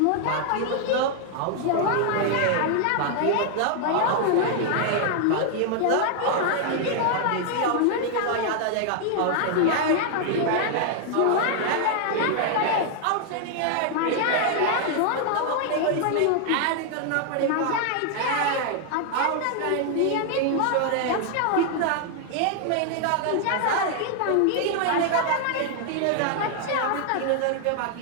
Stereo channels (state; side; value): different; both; correlation 0.00